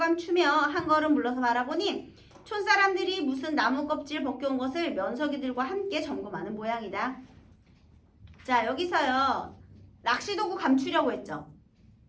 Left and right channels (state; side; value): identical; both; correlation 1.00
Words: 한 걸음 물러서 바라보니 촌사람들이 무슨 나무 껍질 벗겨온 것을 면석이들과 함께 점검하는 모양이다. 자, 여기서요. 낚시도구 감추려고 했죠.